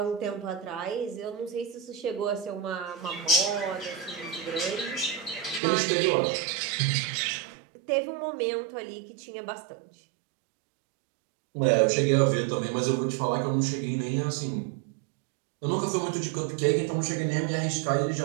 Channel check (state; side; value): drops out; left; at 5.6 s